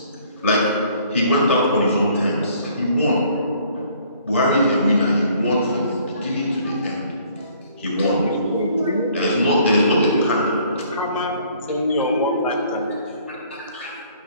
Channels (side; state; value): both; inverted; correlation -0.59